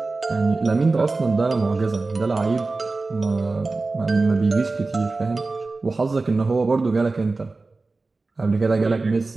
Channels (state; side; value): quieter; left; 3.6 dB